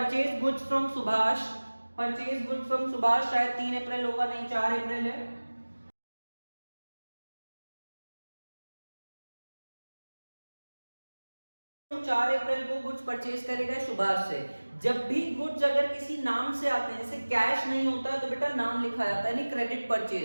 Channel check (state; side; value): inverted; both; correlation -1.00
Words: goods from Subhash. Purchase goods from Subhash, शायद 3 अप्रैल होगा, नहीं 4 अप्रैल है। 4 अप्रैल को गुड्स परचेज करेगा सुभाष से। जब भी गुड्स अगर किसी नाम से आते हैं, जैसे कैश नहीं होता है तो बेटा नाम लिखा जाता है, नहीं क्रेडिट